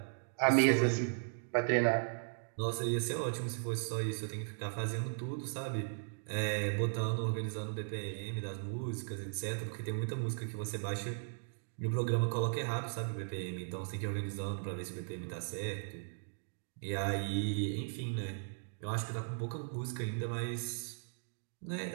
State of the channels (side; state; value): left; silent; digital silence